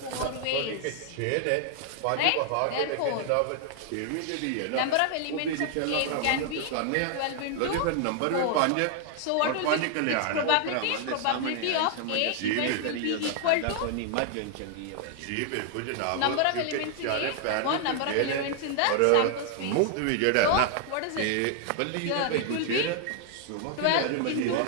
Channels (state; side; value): different; both; correlation 0.00